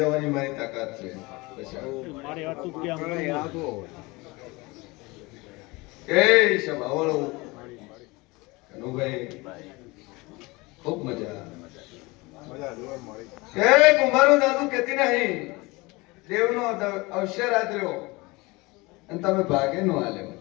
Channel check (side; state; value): right; quieter; 23.8 dB